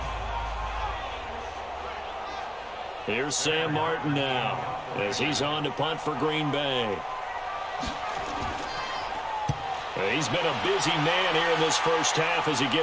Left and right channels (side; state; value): both; identical; correlation 1.00